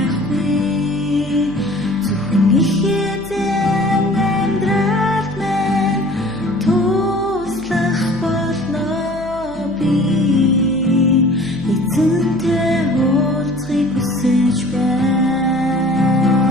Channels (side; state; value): right; noise; hum, 18 dB below the sound